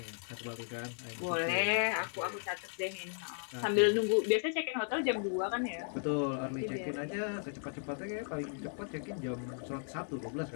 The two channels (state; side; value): silent; right; 54 dB below the other